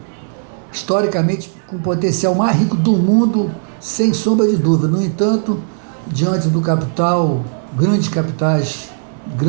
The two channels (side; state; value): left; silent; digital silence